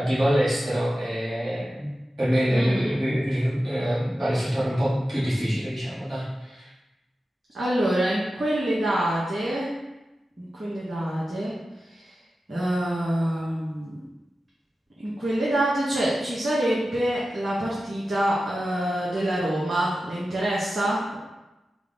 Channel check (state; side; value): normal; both; correlation 0.93